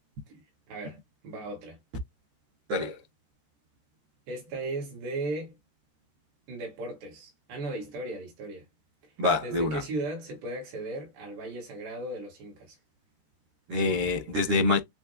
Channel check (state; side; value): late; left; 13 ms